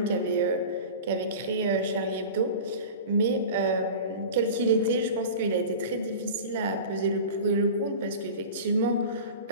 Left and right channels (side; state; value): both; inverted; correlation -0.34